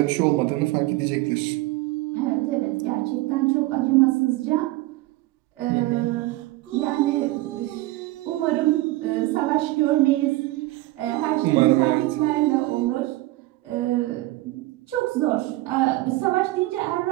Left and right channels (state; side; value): quieter; left; 18.5 dB